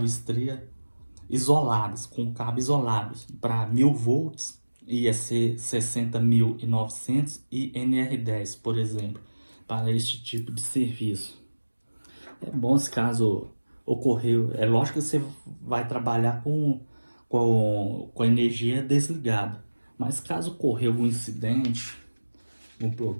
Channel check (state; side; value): inverted; both; correlation -1.00